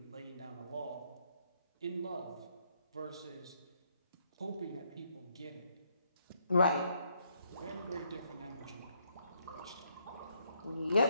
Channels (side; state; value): both; inverted; correlation -0.73